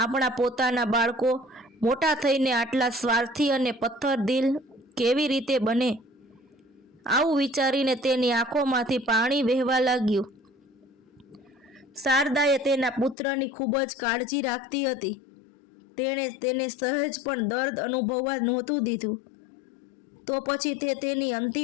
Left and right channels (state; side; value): drops out; right; at 13.2 s